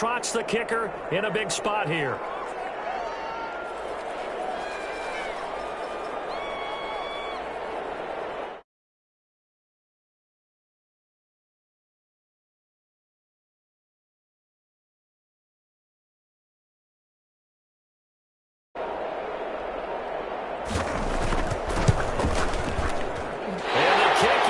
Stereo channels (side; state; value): both; identical; correlation 1.00